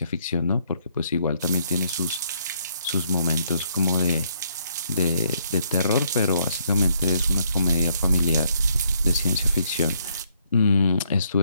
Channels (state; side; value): inverted; both; correlation -0.71